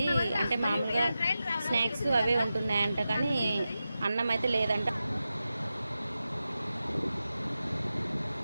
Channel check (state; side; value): inverted; both; correlation -0.92